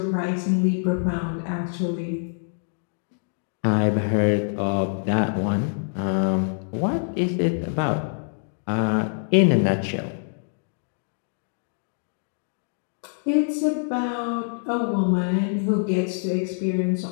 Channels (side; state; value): right; silent; digital silence